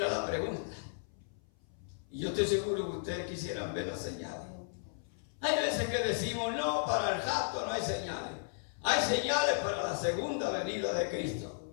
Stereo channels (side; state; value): right; silent; 55 dB below the other